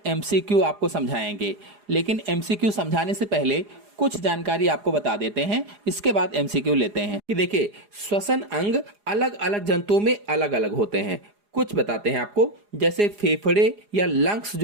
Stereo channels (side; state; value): left; late; 4.8 ms